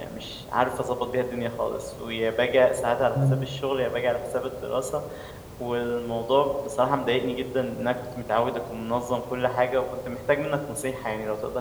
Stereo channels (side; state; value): both; identical; correlation 1.00